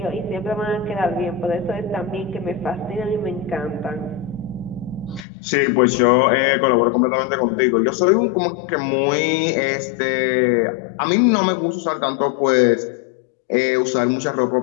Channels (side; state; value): right; drops out; at 5.2 s